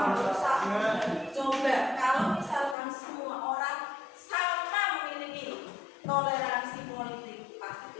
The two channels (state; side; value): drops out; right; at 2.8 s